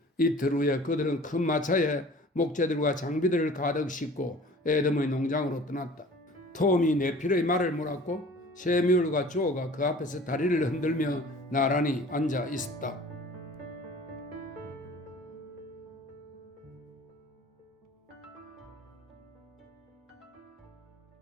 이틀 후에 그들은 큰 마차에 목재들과 장비들을 가득 싣고 에덤의 농장으로 떠났다. 톰이 네필의 말을 물었고 세미월과 조가 그 앞에서 다리를 흔들며 나란히 앉아 있었다.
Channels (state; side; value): normal; both; correlation 0.46